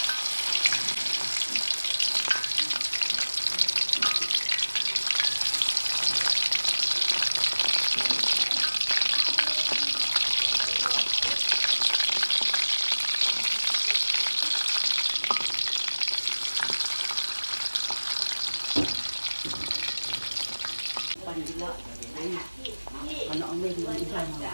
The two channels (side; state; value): both; inverted; correlation -1.00